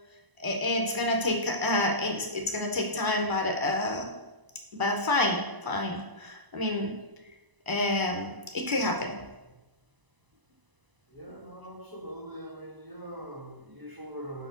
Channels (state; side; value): late; left; 1.0 ms